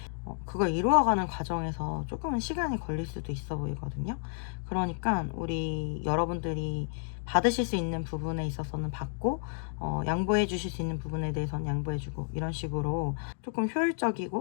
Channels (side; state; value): right; silent; digital silence